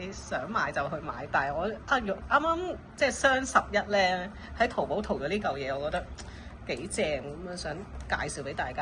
想買就去買。但係我啱啱即係雙11咧，喺淘寶淘咗呢嚿嘢，我覺得幾正咁啊，想介紹俾大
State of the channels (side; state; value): both; identical; correlation 1.00